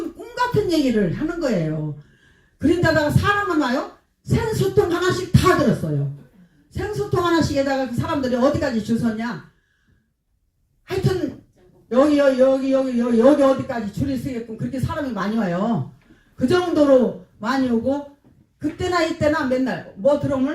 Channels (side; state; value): both; identical; correlation 1.00